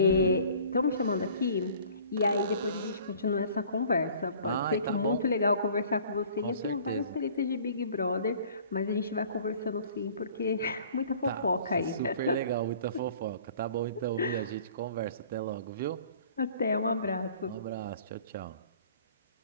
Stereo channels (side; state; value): both; inverted; correlation -0.50